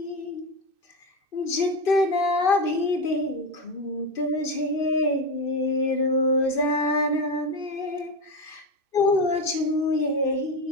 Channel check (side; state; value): right; late; 2.6 ms